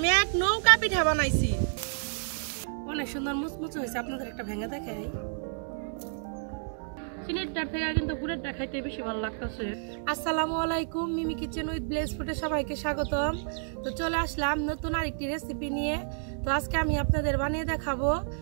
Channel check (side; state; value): left; silent; digital silence